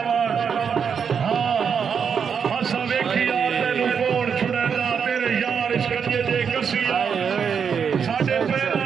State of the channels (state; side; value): quieter; left; 6.8 dB